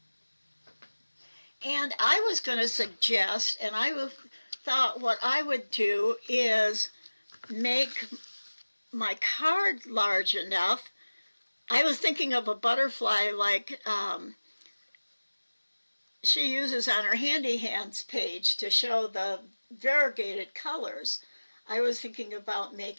And I was going to suggest, and I thought what I would do is make my card large enough. I was thinking of a butterfly like she uses on her Handy Hands page to show the variegated colors. I was thinking about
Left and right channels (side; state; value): both; inverted; correlation -1.00